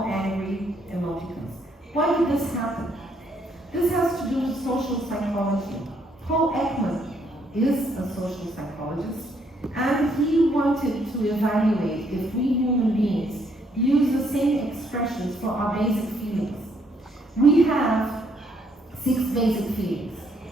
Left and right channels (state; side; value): normal; both; correlation 0.70